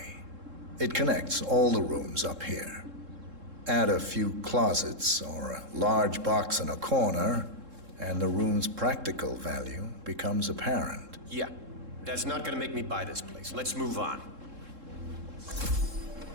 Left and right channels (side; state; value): left; late; 3.7 ms